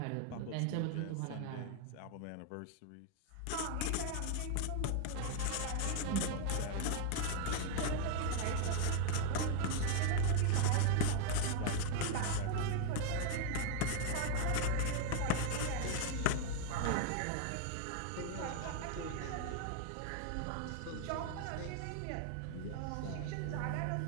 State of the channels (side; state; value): both; different; correlation 0.00